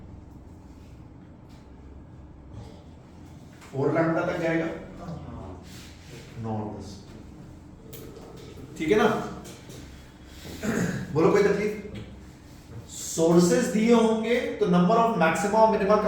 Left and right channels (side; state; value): both; identical; correlation 1.00